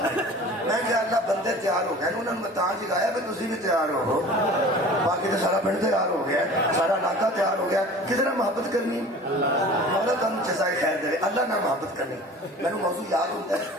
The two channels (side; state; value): both; normal; correlation 0.42